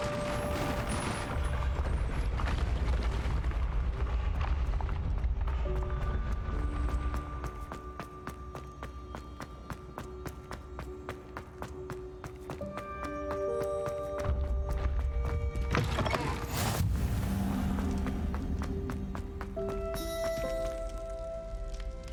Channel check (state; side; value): identical; both; correlation 1.00